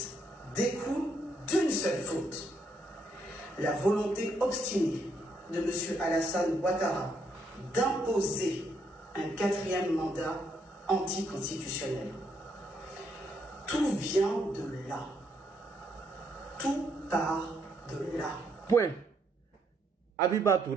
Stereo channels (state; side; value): normal; both; correlation 0.74